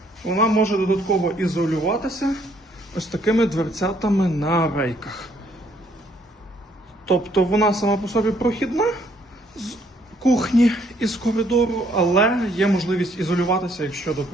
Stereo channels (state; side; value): normal; both; correlation 0.67